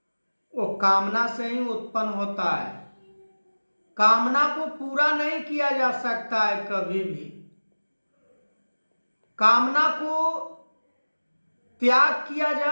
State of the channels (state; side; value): inverted; both; correlation -1.00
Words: वो कामना से ही उत्पन्न होता है। कामना को पूरा नहीं किया जा सकता है कभी भी। कामना को त्याग किया